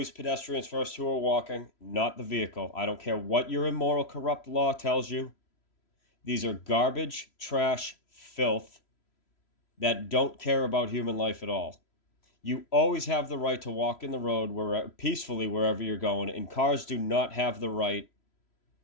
pedestrians first who are walking, not the vehicle. I don't care what your immoral, corrupt law tells you. These are garbage, trash, filth that don't care about human life at all. You always have the right to walk in the road peacefully wherever you're going, and cars do not have the right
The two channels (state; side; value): late; right; 3.0 ms